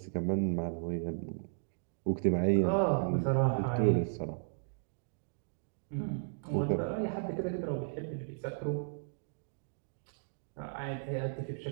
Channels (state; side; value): silent; left; digital silence